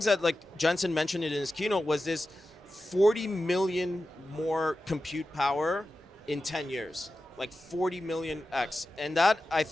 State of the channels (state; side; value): normal; both; correlation 0.93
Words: that Jensen mentioned in his keynote was this 40 million more compute power in 10 years. Like 40 million X. And that, I